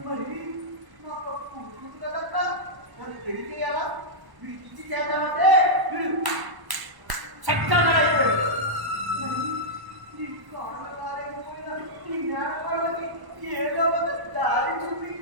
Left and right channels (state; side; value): late; left; 1.0 ms